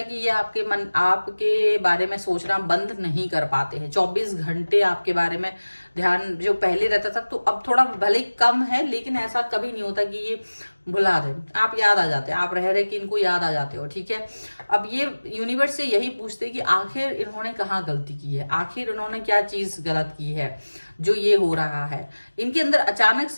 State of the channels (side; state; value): both; inverted; correlation -1.00